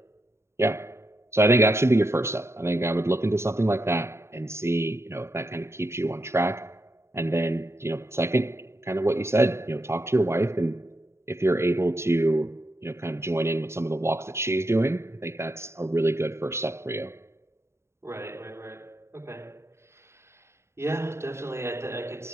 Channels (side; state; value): left; late; 0.13 ms